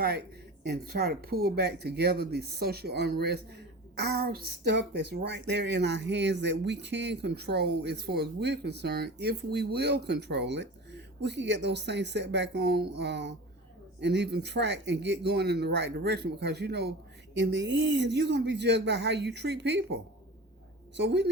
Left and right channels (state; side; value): normal; both; correlation 0.35